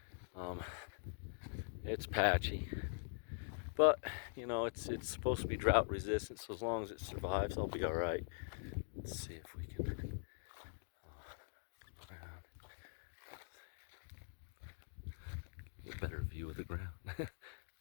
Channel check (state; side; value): silent; right; digital silence